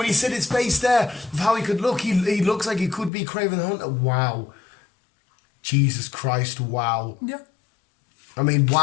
he said his face there, of how he could look, he looks like he could be Kraven the Hunter. Wow. Jesus Christ, wow. Yeah. I mean,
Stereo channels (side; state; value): right; drops out; at 3.1 s